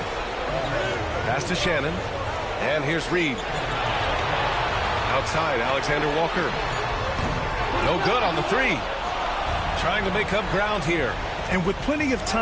Pass to Shannon. And here's Reed. Outside, Alexander Walker. No good on the 3. Trying to make up ground here. And with plenty of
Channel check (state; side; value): identical; both; correlation 1.00